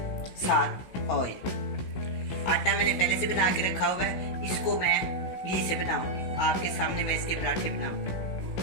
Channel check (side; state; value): right; late; 16 ms